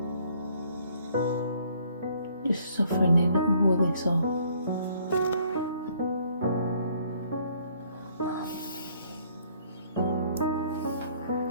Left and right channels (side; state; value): both; inverted; correlation -0.63